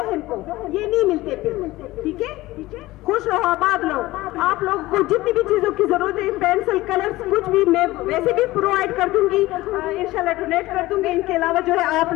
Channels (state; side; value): quieter; right; 18.3 dB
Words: کو, یہ نہیں ملتے پھر. ٹھیک ہے, خوش رہو, آباد رہو. آپ لوگوں کو جتنی بھی چیزوں کی ضرورت ہے, پینسل, کلر, کچھ بھی میں ویسے بھی پرووائڈ کر دوں گی, انشاءاللہ ڈونیٹ کر دوں گی. ان کے علاوہ جو ہے آپ